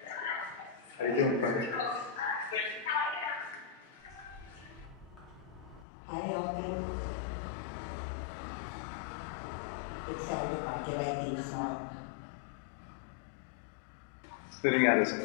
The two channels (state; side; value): drops out; right; at 5.9 s